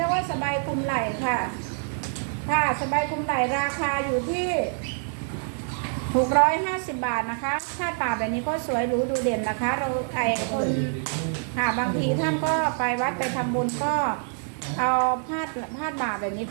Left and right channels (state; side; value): silent; left; 61 dB below the other